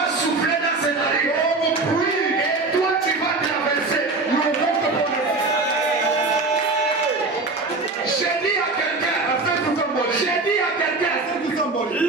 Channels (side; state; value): left; quieter; 3.5 dB